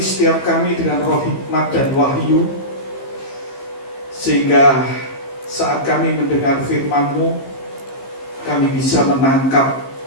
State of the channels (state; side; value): late; right; 15 ms